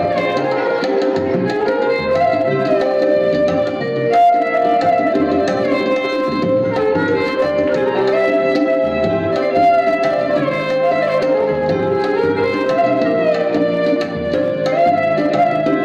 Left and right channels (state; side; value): identical; both; correlation 1.00